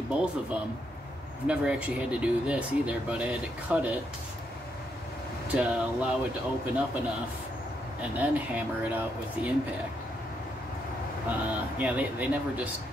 both of them, I've never actually had to do this either, but I had to cut it to allow it to open up enough and then hammer it out with the impact. Yeah, they never just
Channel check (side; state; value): both; normal; correlation 0.78